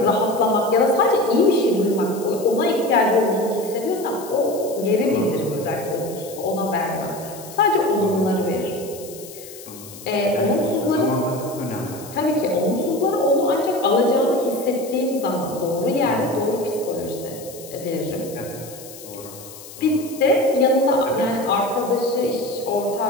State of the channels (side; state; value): left; noise; hiss, 16 dB below the sound